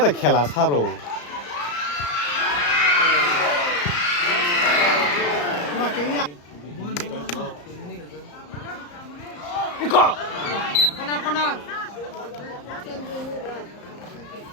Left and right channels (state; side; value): late; right; 34 ms